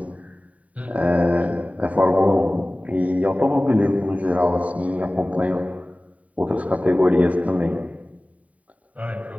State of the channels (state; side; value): late; left; 0.069 ms